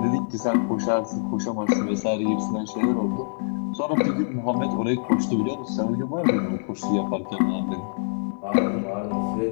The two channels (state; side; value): silent; right; 62 dB below the other